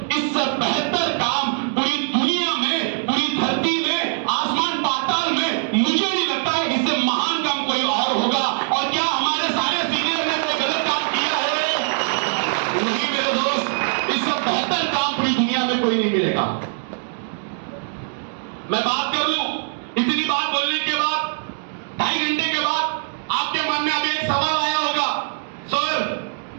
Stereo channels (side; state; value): left; silent; 64 dB below the other